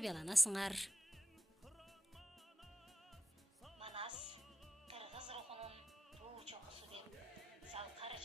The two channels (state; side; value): normal; both; correlation 0.91